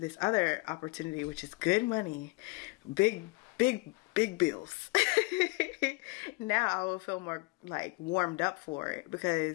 other opportunity, which is good money, big bills, now I will feel more like warmed up for it,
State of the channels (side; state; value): right; quieter; 26.1 dB